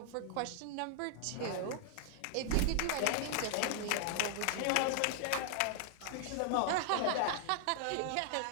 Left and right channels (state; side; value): different; both; correlation 0.00